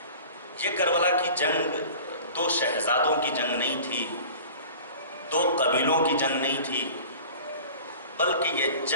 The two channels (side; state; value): both; inverted; correlation -0.41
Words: یہ کربلا کی جنگ دو شہزادوں کی جنگ نہیں تھی، دو قبیلوں کی جنگ نہیں تھی، بلکہ یہ